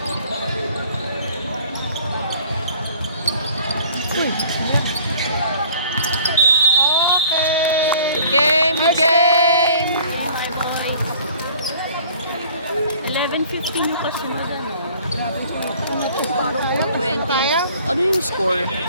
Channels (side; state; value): both; inverted; correlation -0.53